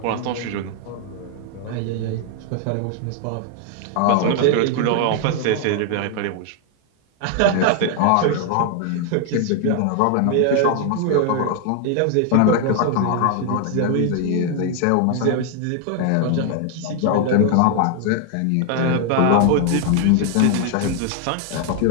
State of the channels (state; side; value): different; both; correlation 0.00